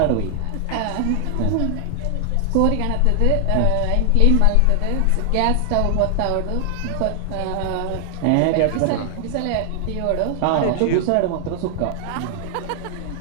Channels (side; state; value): both; different; correlation 0.00